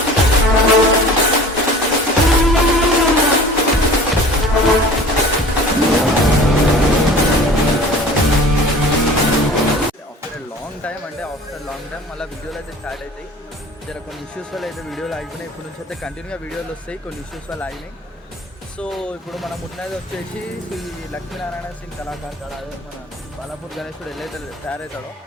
After long time మళ్ళీ వీడియోలు అయితే start అవుతాయి. జర కొన్ని ఇష్యూస్ వల్ల అయితే వీడియోలు ఆగిపోయినాయి. ఇప్పుడు నుంచి అయితే కంటిన్యూగా వీడియోలు వస్తాయి, కొన్ని ఇష్యూస్ వల్ల ఆగినాయి. సో ఇప్పుడు మనం ఉన్నది వచ్చేసి శ్రీ లక్ష్మీనారాయణ సింగ్ కళాకార్ కాడ, మన బాలాపూర్ గణేశుడు వెళ్ళైతే తయారవుతాడో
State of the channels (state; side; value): normal; both; correlation 0.43